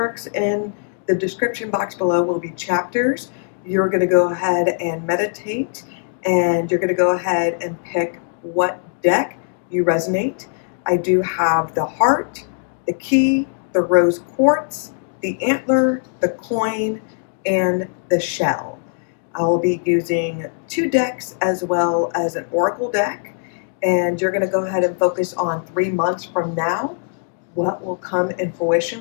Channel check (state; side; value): silent; right; 65 dB below the other